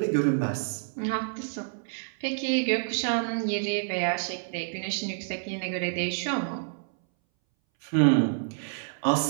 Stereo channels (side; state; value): left; silent; 59 dB below the other